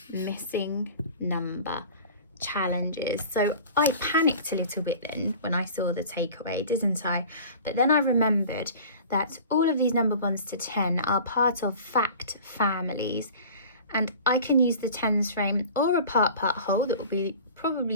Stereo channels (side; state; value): both; inverted; correlation -0.41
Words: missing number challenges. So I panicked a little bit then when I saw the takeaway, didn't I? But then I remembered that all of these number bonds to 10 are part of fact families, and I can use the tens frame or a part whole that we'll be probably